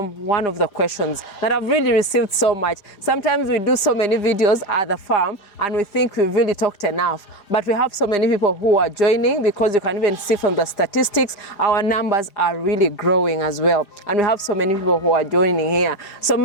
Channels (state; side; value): late; right; 4.9 ms